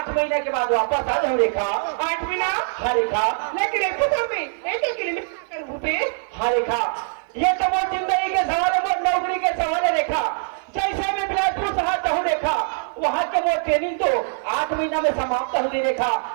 महीने के बाद वापस आ जाऊँ रेखा। 8 महीना? हाँ रेखा। लेकिन एक तो में एक किलोमीटर भूपे। हाँ रेखा ये तो वो जिंदगी के सवाल है, वो नौकरी के सवाल है रेखा। जैसे मैं बिलासपुर शहर जाऊँ रेखा, वहाँ के वो ट्रेनिंग तो 8 महीना में समाप्त हो गई रेखा।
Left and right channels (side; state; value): left; silent; 56 dB below the other